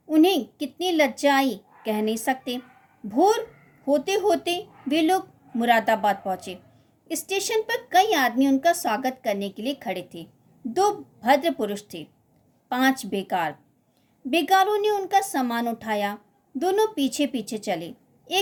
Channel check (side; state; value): both; identical; correlation 1.00